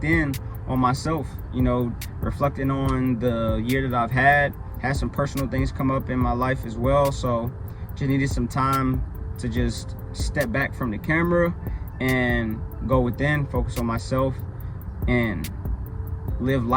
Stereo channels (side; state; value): both; identical; correlation 1.00